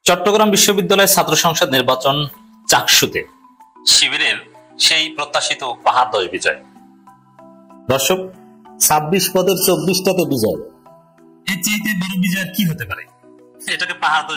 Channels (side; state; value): both; identical; correlation 1.00